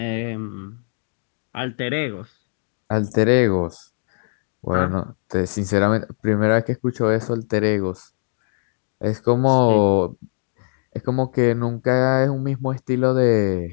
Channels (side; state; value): right; silent; digital silence